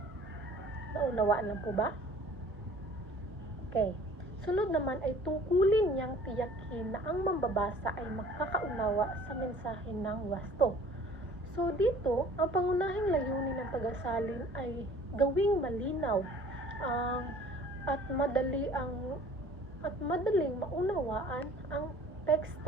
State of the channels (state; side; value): normal; both; correlation 0.51